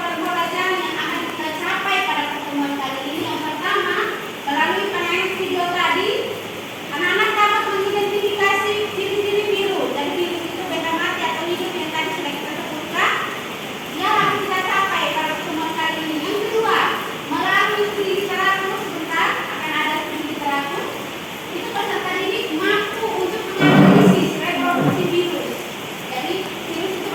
yang akan kita capai pada pertemuan kali ini, yang pertama, melalui penanganan video tadi, anak-anak dapat mengidentifikasi ciri-ciri virus. Dan virus itu benda mati atau hidup yang tadi sudah kita sebutkan. Yang akan kita capai pada pertemuan kali ini. Yang kedua, melalui studi literatur, sebentar akan ada studi literatur. Itu peserta didik mampu untuk menganalisis reproduksi virus. Jadi virus itu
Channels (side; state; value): both; identical; correlation 1.00